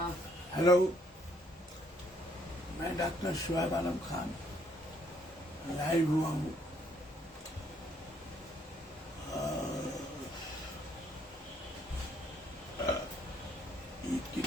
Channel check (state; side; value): normal; both; correlation 0.68